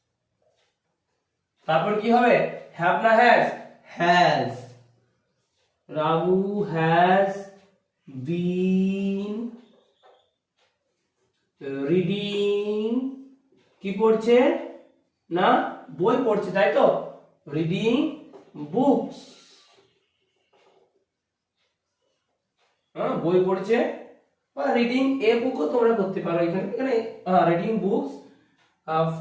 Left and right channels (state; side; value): identical; both; correlation 1.00